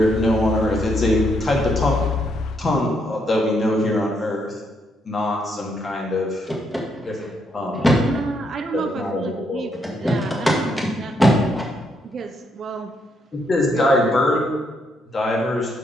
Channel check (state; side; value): normal; both; correlation 0.75